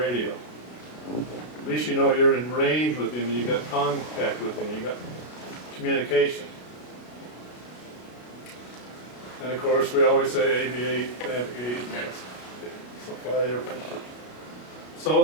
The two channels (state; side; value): late; right; 33 ms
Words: At least you know you're in range with him and you got contact with him, you got communication. And of course, we always say aviate, navigate, fly the airplane. So